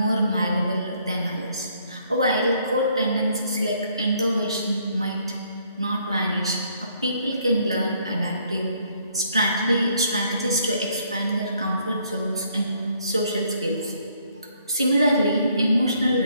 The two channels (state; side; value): inverted; both; correlation -0.67